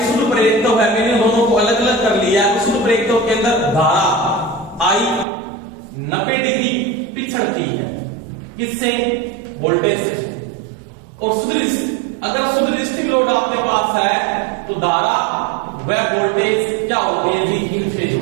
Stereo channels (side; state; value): left; drops out; at 5.2 s